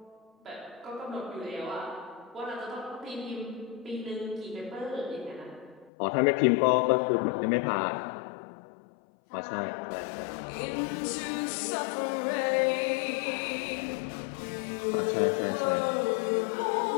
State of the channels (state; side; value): drops out; right; at 5.9 s